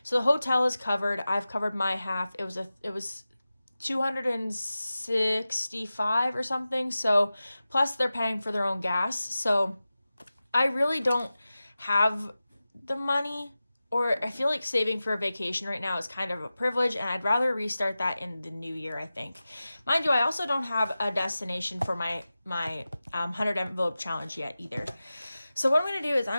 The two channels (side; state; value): both; inverted; correlation -0.95